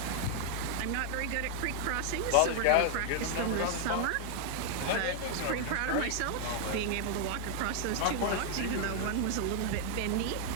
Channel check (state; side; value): different; both; correlation 0.00